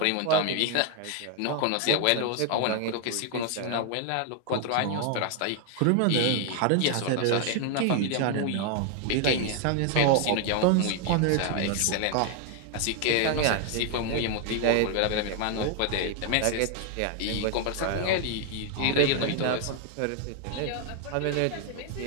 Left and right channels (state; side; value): different; both; correlation 0.00